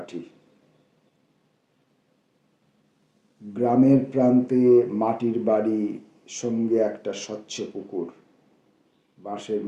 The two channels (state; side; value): identical; both; correlation 1.00